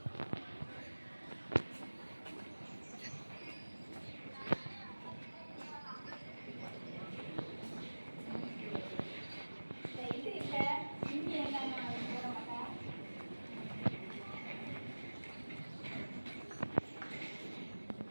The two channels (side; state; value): both; inverted; correlation -1.00